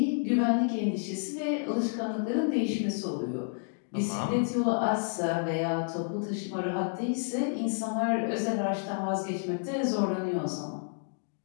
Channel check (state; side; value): silent; right; digital silence